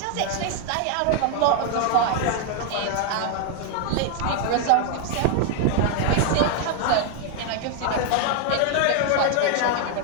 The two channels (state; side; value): different; both; correlation 0.00